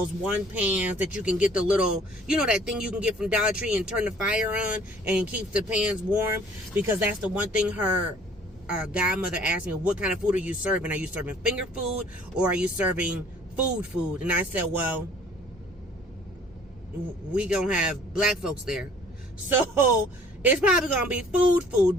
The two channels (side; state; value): both; normal; correlation 0.54